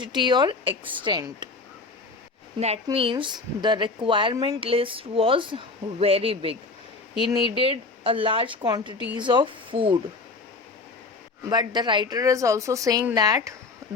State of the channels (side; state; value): right; quieter; 3.8 dB